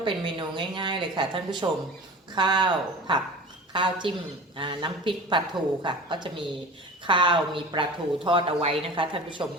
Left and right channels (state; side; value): normal; both; correlation 0.37